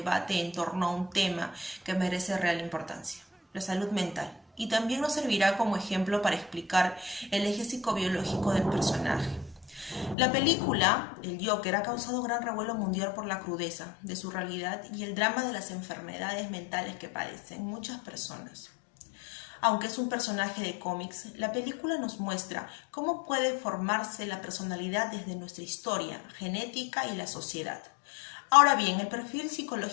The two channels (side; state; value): right; drops out; at 10.2 s